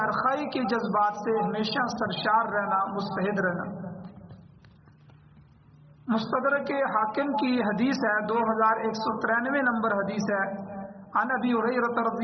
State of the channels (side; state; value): both; identical; correlation 1.00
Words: کے جذبات سے ہمیشہ سرشار رہنا، مستعد رہنا۔ مستدرک حاکم کی حدیث ہے، 2193 نمبر حدیث ہے، عن ابی ہریرہ